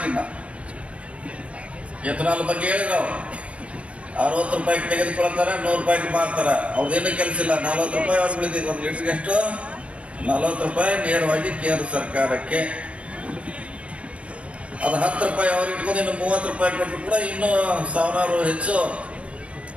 ಎಥನಾಲ್ ಬಗ್ಗೆ ಹೇಳಿದ್ರು ಅವರು 60 ರೂಪಾಯಿಗೆ ತೆಗೆದುಕೊಳ್ತಾರೆ, 100 ರೂಪಾಯಿಗೆ ಮಾರ್ತಾರೆ. ಅವ್ರದ್ದೇನು ಕೆಲಸ ಇಲ್ಲ. 40 ರೂಪಾಯಿ ಅವ್ರು ಉಳಿದಿದ್ದು, 1 ಲೀಟ್ರಿಗೆ ಎಷ್ಟು 40 ರೂಪಾಯಿ ನೇರವಾಗಿ ಕೇಂದ್ರ ಸರ್ಕಾರಕ್ಕೆ. ಅದು 10 ರೂಪಾಯಿ ಅವ್ರಿಗೆ ಇಟ್ಕೊಂಡು ಇನ್ನು 30 ರೂಪಾಯಿ ಕೊಟ್ಟರು ಕೂಡ ಇನ್ನೂ 1000 ಹೆಚ್ಚು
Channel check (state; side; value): late; left; 0.062 ms